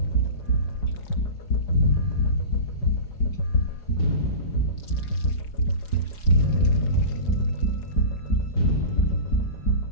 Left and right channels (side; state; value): right; late; 4.9 ms